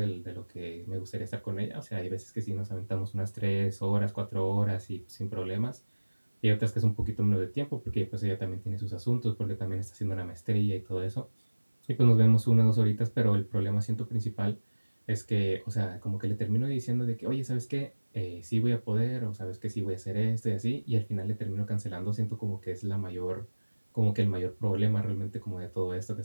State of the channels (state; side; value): inverted; both; correlation -1.00